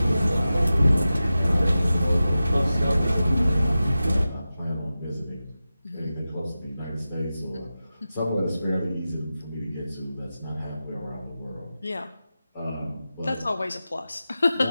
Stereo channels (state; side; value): inverted; both; correlation -0.93